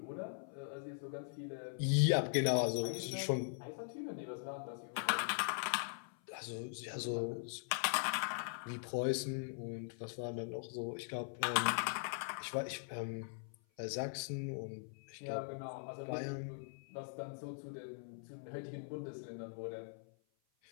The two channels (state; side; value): silent; right; 50 dB below the other